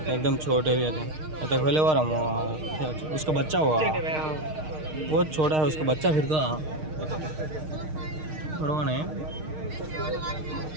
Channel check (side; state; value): left; late; 6.5 ms